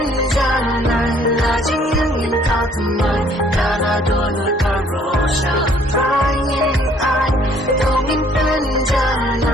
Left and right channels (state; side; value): normal; both; correlation 0.61